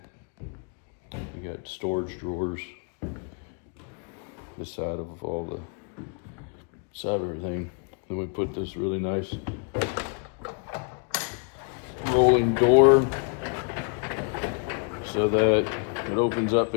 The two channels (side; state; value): right; quieter; 39.3 dB